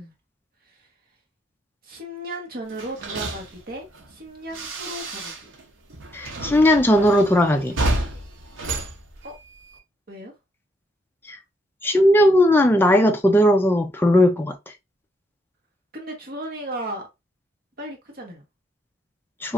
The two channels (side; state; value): both; normal; correlation 0.76